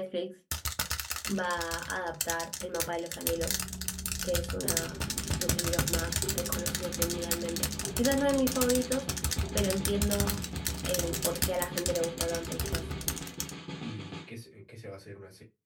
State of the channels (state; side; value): identical; both; correlation 1.00